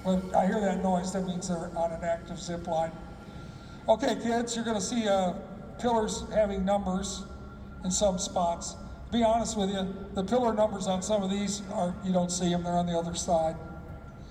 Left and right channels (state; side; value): identical; both; correlation 1.00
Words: But I hear that noise, that means they're on an active zip line. Okay, kids, you're gonna see pillars having numbers in some spots. To be honest with you, the pillar numbers on some of these you don't see them, they're on the other side.